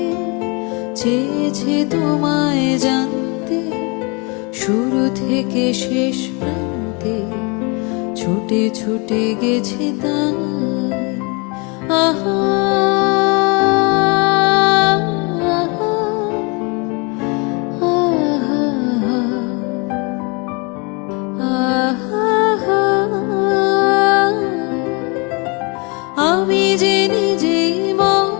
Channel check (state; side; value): quieter; right; 30.7 dB